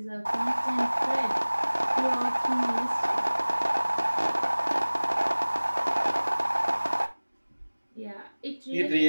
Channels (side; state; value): both; inverted; correlation -1.00